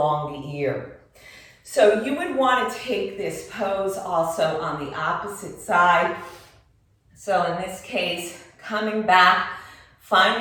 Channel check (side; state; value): both; identical; correlation 1.00